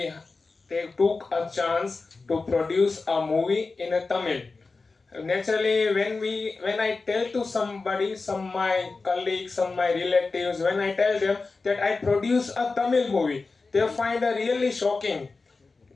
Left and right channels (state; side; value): quieter; right; 4.0 dB